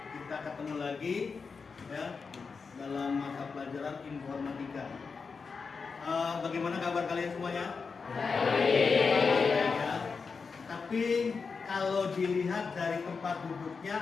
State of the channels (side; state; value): right; quieter; 5.0 dB